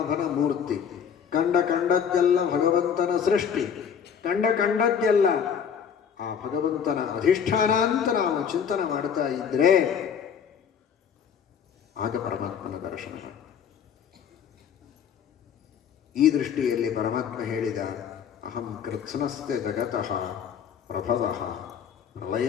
ಮೂರ್ತಿ, ಕಂಡದ್ದೆಲ್ಲ ಭಗವಂತನ ಸೃಷ್ಟಿ, ಕಂಡದ್ದೆಲ್ಲ ಆ ಭಗವಂತನ ಅಧಿಷ್ಠಾನ ಅಂತ ನಾವು ಚಿಂತನೆ ಮಾಡ್ತಾ ಇದ್ರೆ ಆಗ ಪರಮಾತ್ಮನ ದರ್ಶನ. ಈ ದೃಷ್ಟಿಯಲ್ಲಿ ಪರಮಾತ್ಮ ಹೇಳಿದ ಅಹಂ ಕೃತ್ಸ್ನಸ್ಯ ಜಗತಃ ಪ್ರಭವಃ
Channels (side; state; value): right; quieter; 7.6 dB